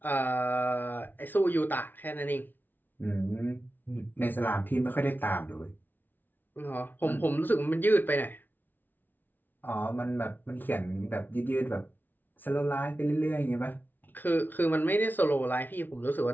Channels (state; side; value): late; right; 0.089 ms